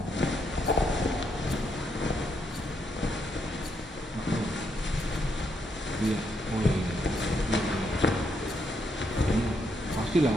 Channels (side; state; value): both; normal; correlation 0.77